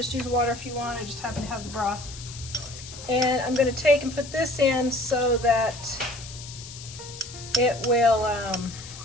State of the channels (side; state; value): left; noise; hiss, 14 dB below the sound